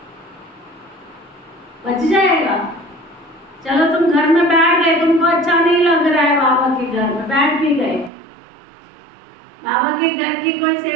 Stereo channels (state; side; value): drops out; left; at 8.1 s